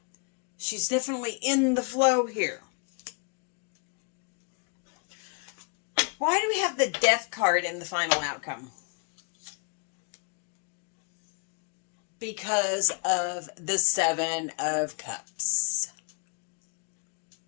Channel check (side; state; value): right; quieter; 37.9 dB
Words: She's definitely in the flow here. Why do we have the Death card in the final outcome? Because of the Seven of Cups.